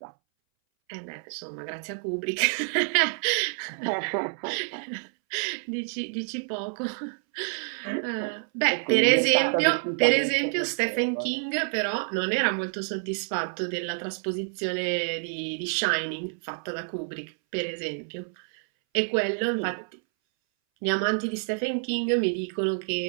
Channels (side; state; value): left; silent; 60 dB below the other